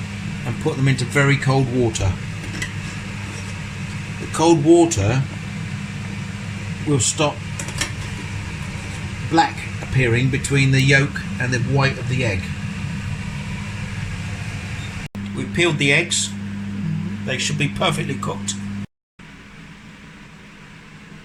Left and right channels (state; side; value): identical; both; correlation 1.00